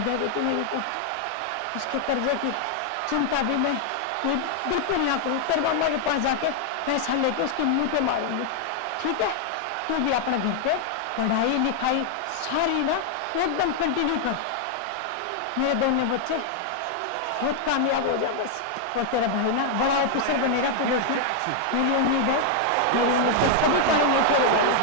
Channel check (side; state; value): both; different; correlation 0.00